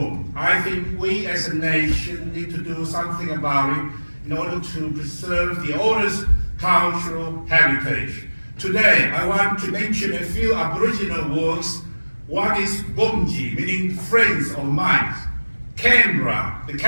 I think we as a nation need to do something about it in order to preserve the oldest cultural heritage. Today, I want to mention a few Aboriginal words. One is Bumji, meaning friends or mates. Canberra, the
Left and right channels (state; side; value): inverted; both; correlation -1.00